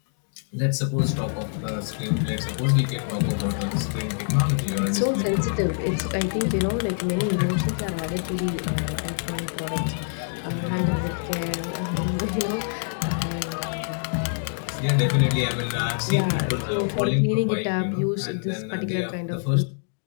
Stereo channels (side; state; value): right; silent; digital silence